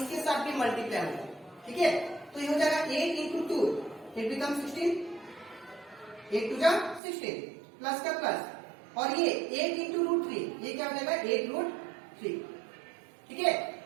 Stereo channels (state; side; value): drops out; left; at 7.0 s